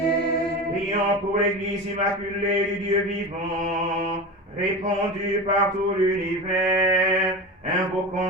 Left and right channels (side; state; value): both; normal; correlation 0.26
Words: Prions pour l'Église immaculée du Dieu vivant, répandue par tout l'univers,